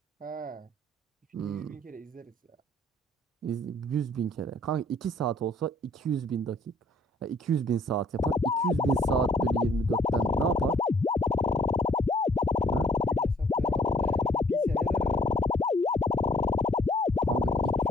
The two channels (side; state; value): both; normal; correlation 0.60